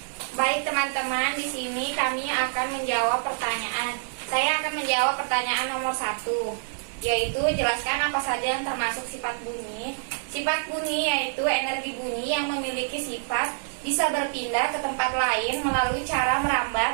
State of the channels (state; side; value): silent; left; digital silence